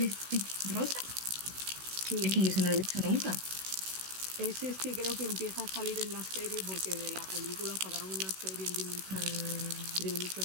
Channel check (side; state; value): left; late; 16 ms